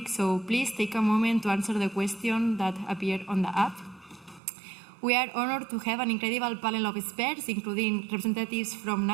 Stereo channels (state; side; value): drops out; left; at 4.4 s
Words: so please take a moment to answer the question that appeared on the app. We are honored to have an incredible panel of experts, including representatives from